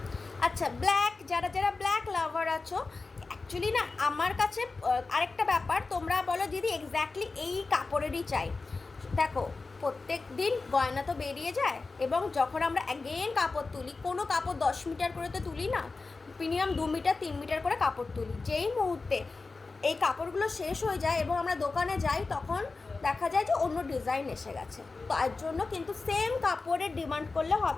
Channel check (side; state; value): right; quieter; 3.9 dB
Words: আচ্ছা, ব্ল্যাক, যারা যারা ব্ল্যাক লাভার আছো, অ্যাকচুয়ালি না আমার কাছে আরেকটা ব্যাপার, তোমরা বলো দিদি এক্স্যাক্টলি এই কাপড়েরই চাই। দেখো, প্রত্যেক দিন গয়না তো বেরিয়ে যায় এবং যখন আমরা অ্যাগেন কাপড় তুলি, কোনো কাপড় 10 মিটার করে তো তুলি না, মিনিমাম 2 মিটার 3 মিটার করে কাপড় তুলি। যেই মুহূর্তে এই কাপড়গুলো শেষ হয়ে যায় এবং আমরা দোকানে যাই, তখন দেখা যায় যে অন্য ডিজাইন এসে গেছে। তো এর জন্য কিন্তু সেম কাপড়ের ডিমান্ড করলে